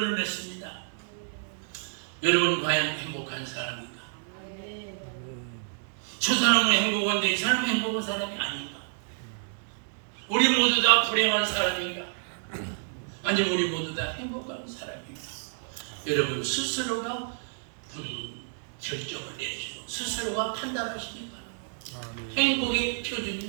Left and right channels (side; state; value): left; silent; 58 dB below the other